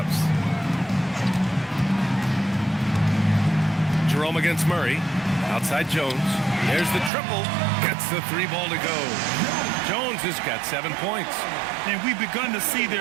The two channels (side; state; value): left; drops out; at 7.1 s